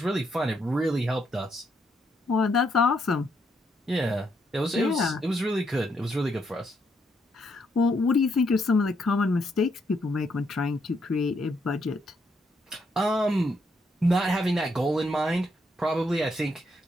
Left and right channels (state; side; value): normal; both; correlation 0.75